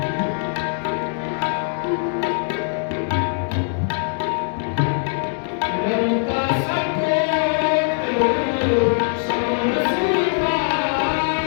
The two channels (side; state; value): right; silent; digital silence